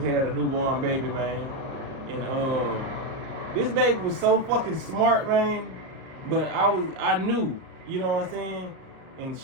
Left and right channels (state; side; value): late; left; 37 ms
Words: a newborn baby, man. And this baby was so fucking smart, man. But I knew, you know what I'm saying? And